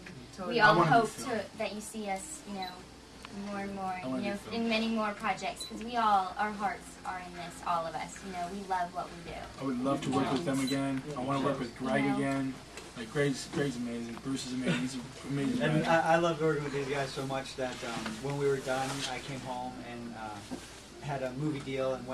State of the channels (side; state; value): both; identical; correlation 1.00